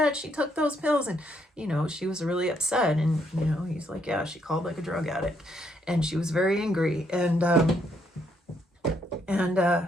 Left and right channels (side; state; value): both; normal; correlation 0.73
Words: She took those pills." And, you know, she was really upset. And, you know, he's like, "Yeah, she called like a drug addict." And she was very angry.